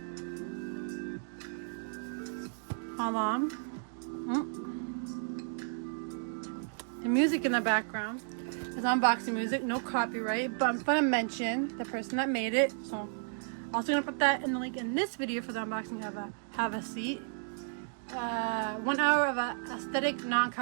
hold on. The music in the background is unboxing music, no copyright, but I'm gonna mention the person that made it. So I'm also gonna put that in the link in this video for the unboxing of Have a Seat. 1 hour of aesthetic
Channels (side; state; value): left; silent; digital silence